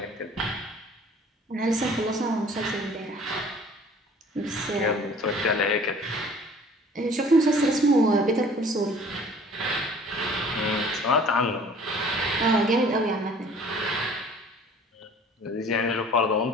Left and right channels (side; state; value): both; normal; correlation 0.51